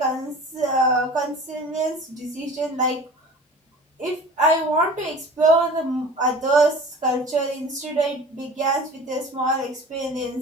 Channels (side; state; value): both; normal; correlation 0.41